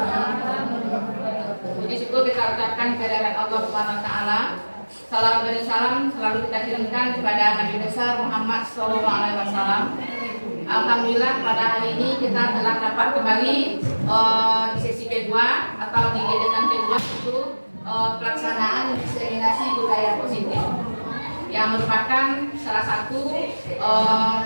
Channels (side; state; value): both; inverted; correlation -1.00